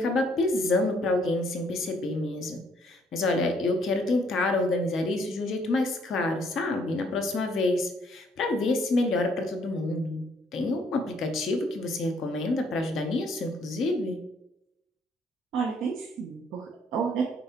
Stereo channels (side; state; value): both; normal; correlation 0.66